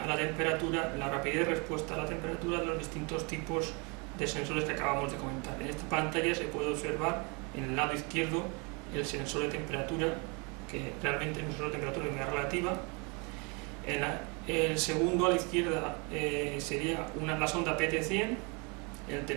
la temperatura, la rapidez de respuesta a la temperatura de los distintos tipos de sensores que acabamos de comentar. En esta pantalla se puede observar en el lado izquierdo el sensor de temperatura, que realmente es un sensor de temperatura y humedad relativa. El segundo a la izquierda sería la sonda PT100, el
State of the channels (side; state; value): left; quieter; 31.4 dB